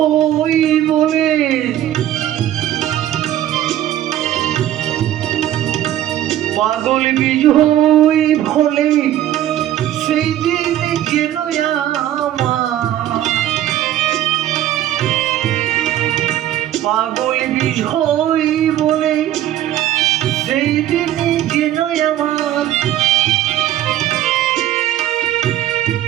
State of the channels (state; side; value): quieter; left; 12.5 dB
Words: বলে পাগল বিজয় ভোলে সেই দিন যেন আমার, পাগল বিজয় বলে সেই দিন যেন আমার